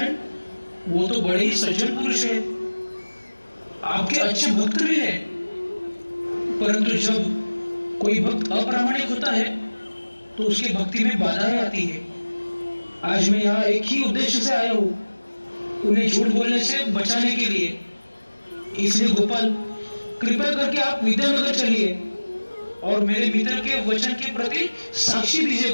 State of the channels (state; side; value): inverted; both; correlation -1.00